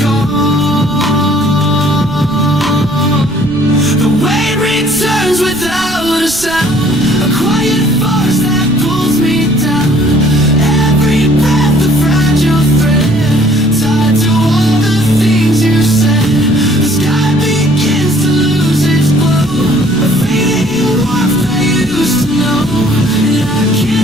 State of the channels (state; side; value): noise; right; rumble, 15 dB below the sound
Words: The wind returns without a sound, a quiet force that pulls me down. Every breath a fragile thread, tied to all the things you said. The sky begins to lose its glow, a fading warmth I used to know, and I